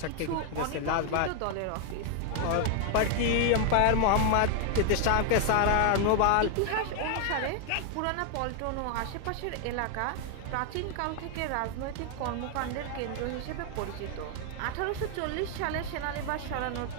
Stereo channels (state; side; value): different; both; correlation 0.00